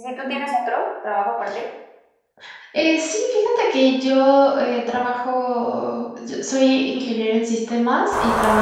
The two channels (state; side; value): identical; both; correlation 1.00